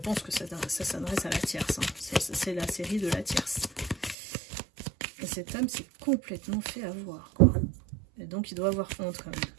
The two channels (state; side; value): drops out; left; at 4.2 s